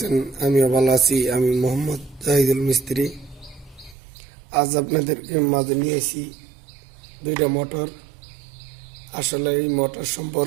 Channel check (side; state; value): left; drops out; at 4.0 s